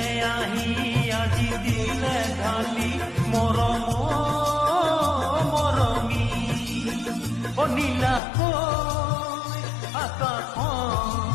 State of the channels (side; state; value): right; drops out; at 8.2 s